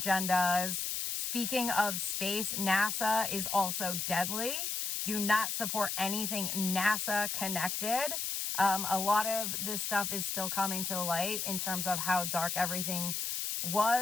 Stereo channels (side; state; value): left; noise; hiss, 2 dB below the sound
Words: Speaking of space, NASA is also deadly. Do not support anything NASA connected. A lot of this stuff is still coming to light in terms of how dark everything